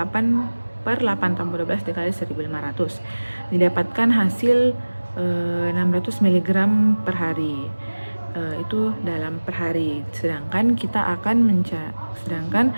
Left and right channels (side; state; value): both; inverted; correlation -1.00